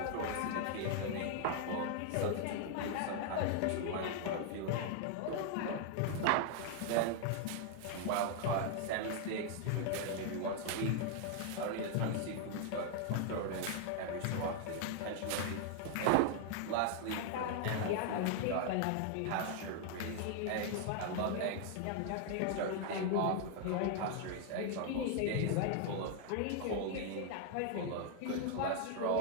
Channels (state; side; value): different; both; correlation 0.00